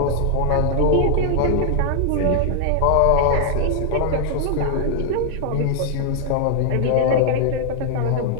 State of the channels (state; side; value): different; both; correlation 0.00